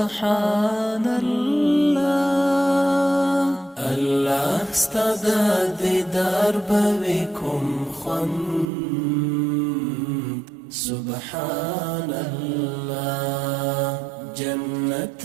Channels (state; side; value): drops out; left; at 8.7 s